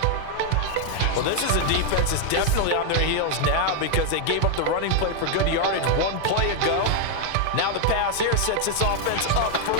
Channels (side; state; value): both; different; correlation 0.00